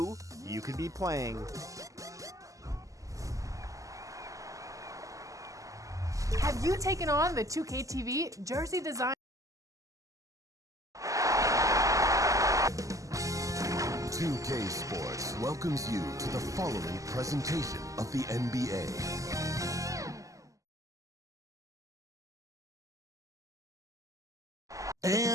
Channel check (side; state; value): left; late; 0.16 ms